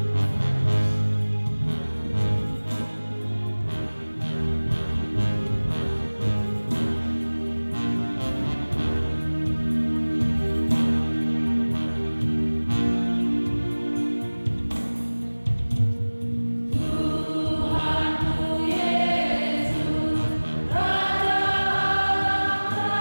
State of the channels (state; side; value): inverted; both; correlation -1.00